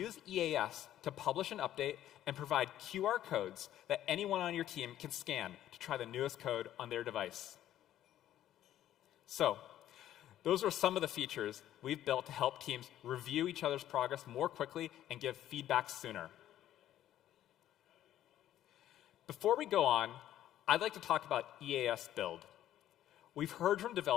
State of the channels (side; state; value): right; quieter; 12.3 dB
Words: EAS to publish an update and provide QR codes that anyone on your team can scan to try the newest code on their device. So, those are some of the features we've built to help teams review each other's progress more quickly and give feedback sooner. Before we go on, I'd like to talk about EAS build. We've heard from